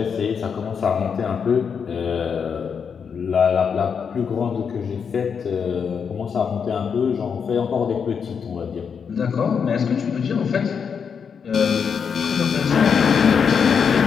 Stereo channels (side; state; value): right; quieter; 6.6 dB